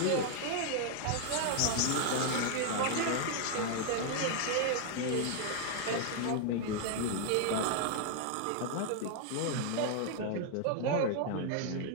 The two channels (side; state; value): both; different; correlation 0.00